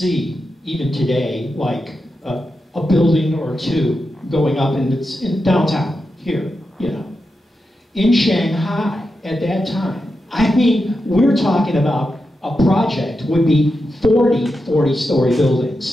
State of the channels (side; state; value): both; normal; correlation 0.88